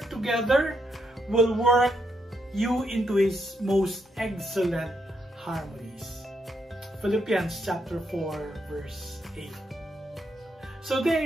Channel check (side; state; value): both; normal; correlation 0.79